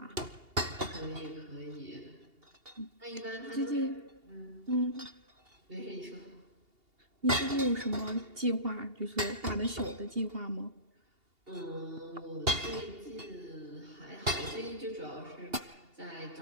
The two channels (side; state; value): left; late; 2.8 ms